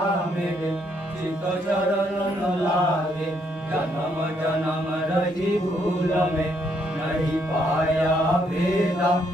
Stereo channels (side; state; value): both; normal; correlation 0.72